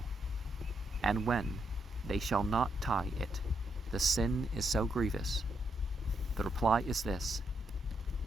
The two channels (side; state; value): both; normal; correlation 0.79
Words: and when they shall not tie it, the sin is so grievous? The reply is this: